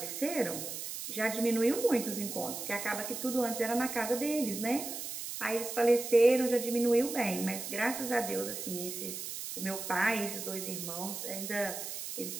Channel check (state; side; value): noise; right; hiss, 7 dB below the sound